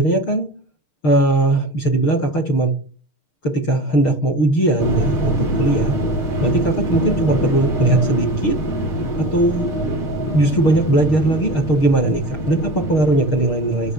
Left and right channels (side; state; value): right; late; 6.5 ms